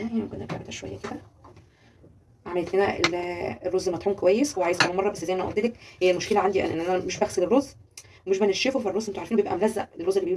يعني، ممكن نرجع ده شويه كده. عملت لنا الرز مطحون كويس، هو عايز كمان مره، بس زي ما قلت لك هي المشكله عندي ان انا مش بغسل الرز ومش بنشفه، فالرز انتوا عارفين بيبقى ملزق، الرز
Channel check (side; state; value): both; identical; correlation 1.00